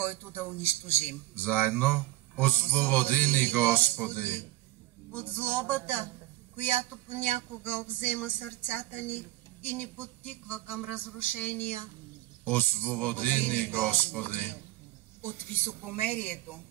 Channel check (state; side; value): quieter; left; 16.9 dB